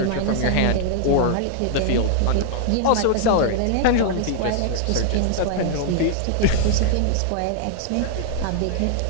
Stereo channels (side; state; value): both; different; correlation 0.00